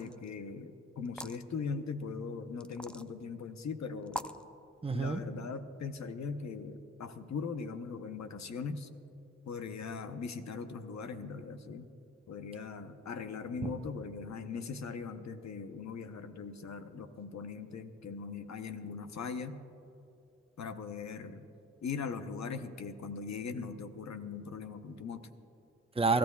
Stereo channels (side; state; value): both; normal; correlation 0.38